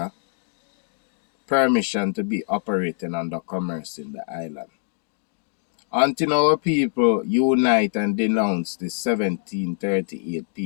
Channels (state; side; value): silent; right; 63 dB below the other